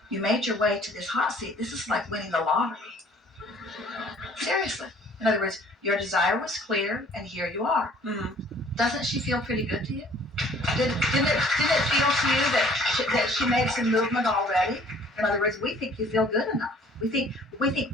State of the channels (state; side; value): normal; both; correlation 0.55